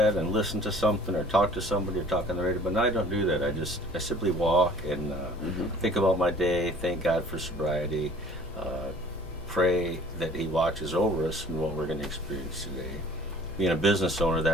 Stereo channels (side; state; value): both; normal; correlation 0.50